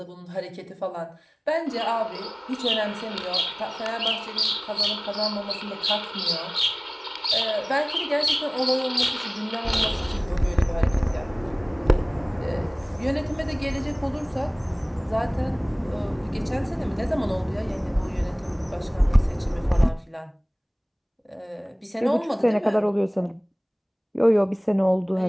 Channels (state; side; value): identical; both; correlation 1.00